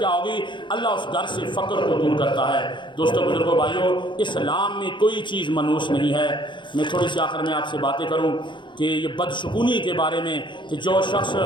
ہوگی؟ اللہ اس گھر سے فقر کو دور کرتا ہے. دوستو بزرگوں بھائیوں، اسلام میں کوئی چیز منحوس نہیں ہے. میں تھوڑی سی آخر میں آپ سے باتیں کروں کہ یہ بدشگونی کے بارے میں، کہ جو شخص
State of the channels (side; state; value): right; late; 0.23 ms